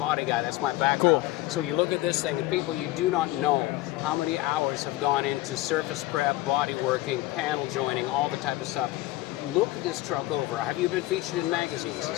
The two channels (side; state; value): right; quieter; 17.8 dB